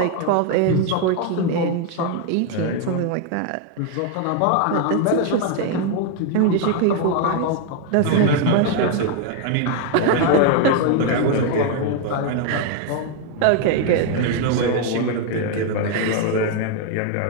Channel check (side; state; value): both; different; correlation 0.01